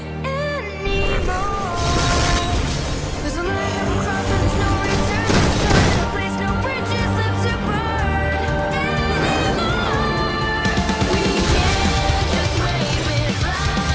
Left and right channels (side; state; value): both; identical; correlation 1.00